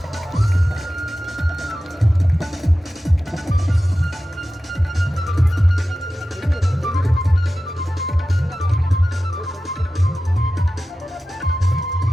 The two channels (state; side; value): normal; both; correlation 0.94